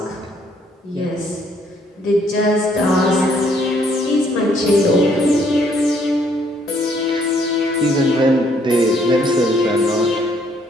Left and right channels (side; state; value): both; normal; correlation 0.67